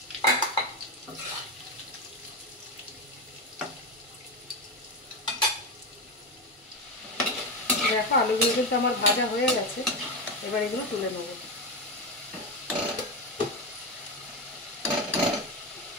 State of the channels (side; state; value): both; normal; correlation 0.15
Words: দেখো আলুগুলো কিন্তু আমার ভাজা হয়ে গেছে। এবার এগুলো তুলে নেব।